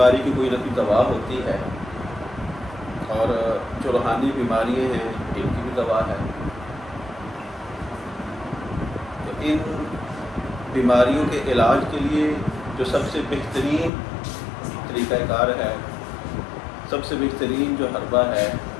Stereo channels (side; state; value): right; drops out; at 13.9 s